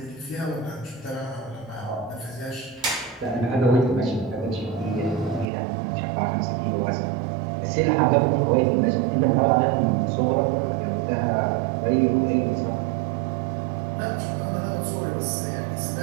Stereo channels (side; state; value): left; drops out; at 5.5 s